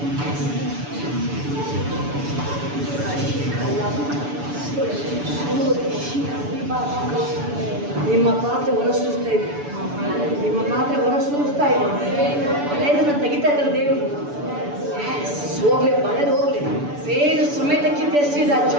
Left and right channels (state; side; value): late; left; 6.9 ms